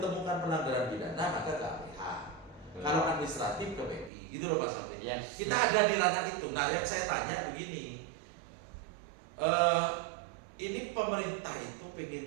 pelanggaran pidana maka ke APH. Kalau administratif ke PI, gitu loh Mas Amri. Yes. Kita ada di ranah itu. Nah yang saya tanya begini, ini pemerintah itu pengen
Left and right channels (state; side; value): drops out; left; at 4.1 s